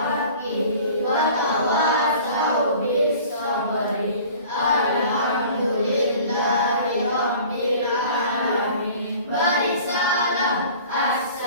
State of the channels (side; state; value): both; inverted; correlation -0.45